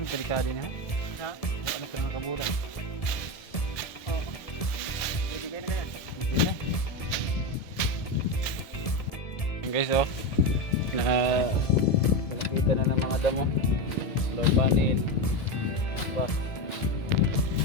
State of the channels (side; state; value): right; late; 1.7 ms